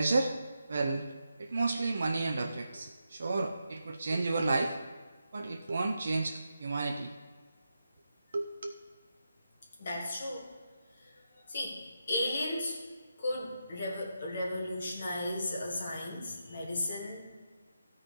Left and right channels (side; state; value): both; inverted; correlation -0.86